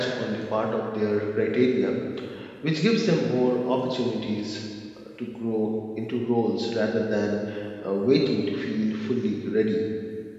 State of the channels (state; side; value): identical; both; correlation 1.00